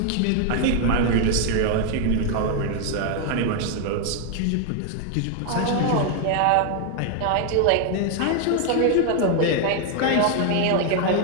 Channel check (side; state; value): both; different; correlation 0.00